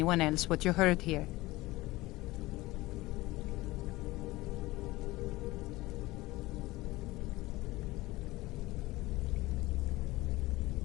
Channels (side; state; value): right; quieter; 19.5 dB